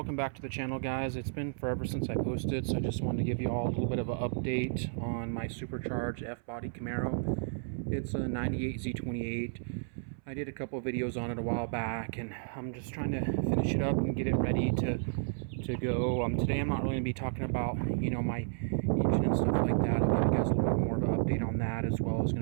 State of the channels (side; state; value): left; silent; 56 dB below the other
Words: back to the channel, guys. It's been forever since I posted, so I just wanted to give you all a little bit of an update on my Supercharged F-Body Camaro. It's a 98 Z28. I did a couple of videos on it a while back, and I'm just trying to finish it up and get it ready to go. Today I'm not really going to be talking about, my engine and stuff like that. I'll give you guys a little bit more of an update on that, as well as